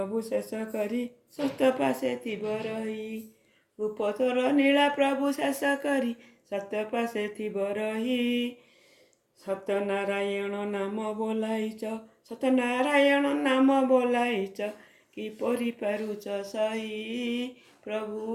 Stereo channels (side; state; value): both; identical; correlation 1.00